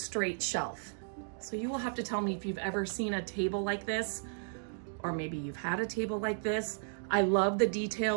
shelf. So you will have to tell me if you've ever seen a table like this, or maybe you've had a table like this. I love the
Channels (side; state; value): left; silent; digital silence